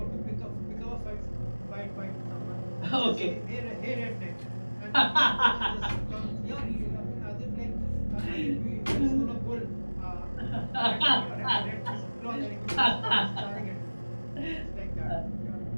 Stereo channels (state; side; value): inverted; both; correlation -1.00